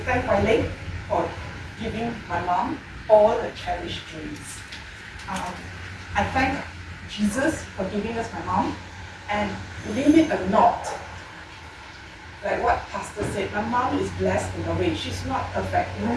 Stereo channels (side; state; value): both; identical; correlation 1.00